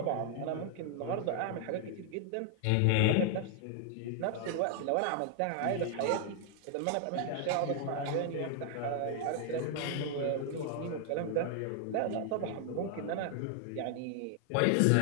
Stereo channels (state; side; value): different; both; correlation 0.00